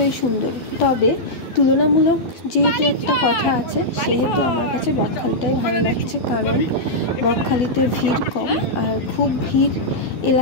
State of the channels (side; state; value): right; late; 12 ms